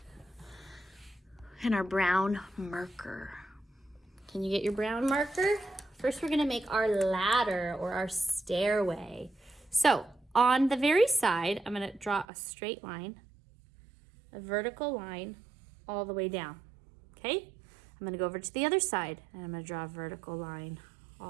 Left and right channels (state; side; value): drops out; left; at 12.2 s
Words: And our brown marker. Can you get your brown marker? First, we're gonna make our ladder or our stairway. So on the very side, I'm gonna draw a straight line, a vertical line all the way down, okay? I'm gonna go over to the other side and I'm gonna draw a vertical line